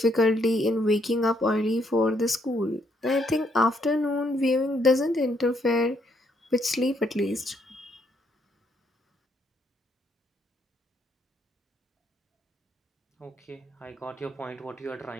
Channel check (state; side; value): normal; both; correlation 0.72